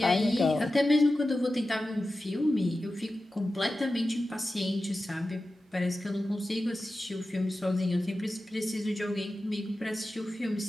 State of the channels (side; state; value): both; normal; correlation 0.94